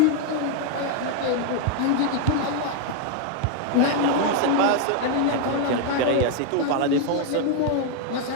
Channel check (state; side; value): different; both; correlation 0.01